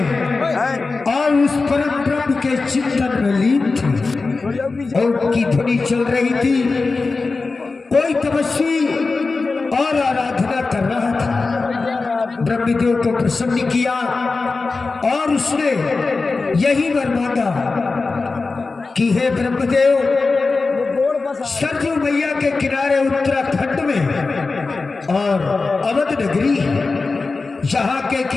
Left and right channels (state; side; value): quieter; right; 4.0 dB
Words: और उस परम ब्रह्म के चिंतन में लीन थे और की ध्वनि चल रही थी। कोई तपस्वी और आराधना कर रहा था। ब्रह्मदेव को प्रसन्न किया और उसने यही वर मांगा कि हे ब्रह्मदेव, सरजू मैया के किनारे उत्तराखंड में और अवध नगरी, जहाँ के